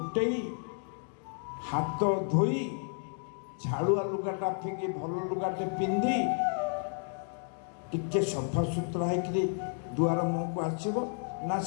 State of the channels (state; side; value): silent; right; 57 dB below the other